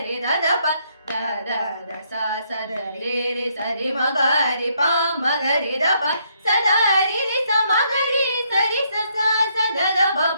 దద ప దద ద స స ద రే రే సరి మగరి ప మగరి ద ప సదరి రి స మగరి సరి స స స ద ద ప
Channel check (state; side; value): inverted; both; correlation -0.72